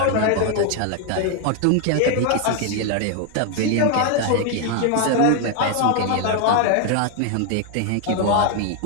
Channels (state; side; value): different; both; correlation 0.01